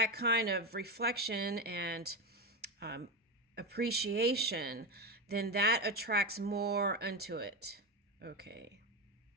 kind of reflection and appreciation, then that attracts more unto it. Okay.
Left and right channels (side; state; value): both; normal; correlation 0.14